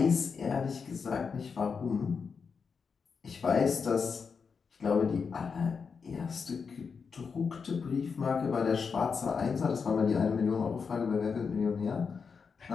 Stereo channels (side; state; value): right; quieter; 5.7 dB